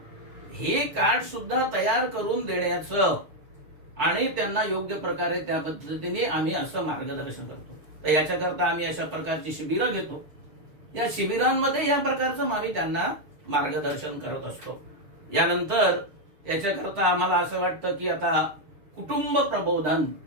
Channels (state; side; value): late; left; 6.6 ms